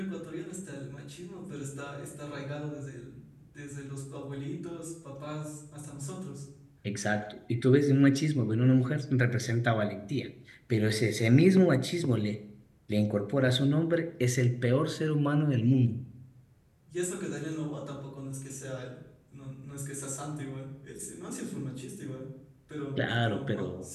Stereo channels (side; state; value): both; identical; correlation 1.00